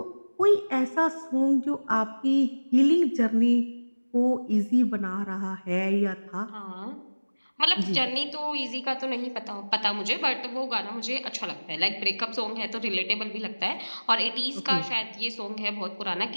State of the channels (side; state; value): both; inverted; correlation -1.00